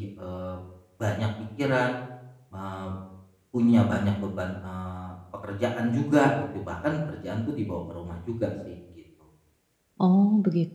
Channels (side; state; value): both; identical; correlation 1.00